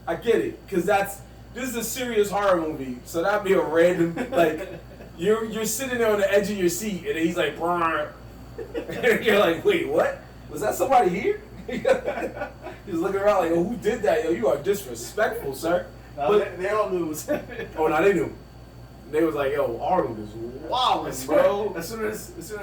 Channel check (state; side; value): identical; both; correlation 1.00